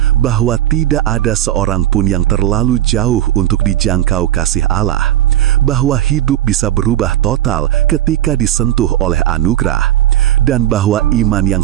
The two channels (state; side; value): quieter; left; 12.9 dB